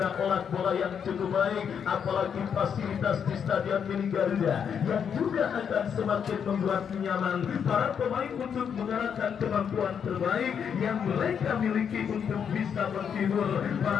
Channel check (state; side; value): quieter; right; 7.5 dB